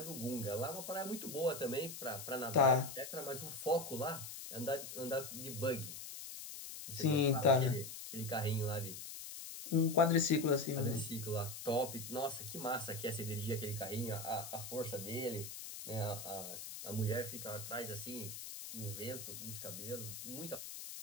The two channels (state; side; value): noise; left; hiss, 9 dB below the sound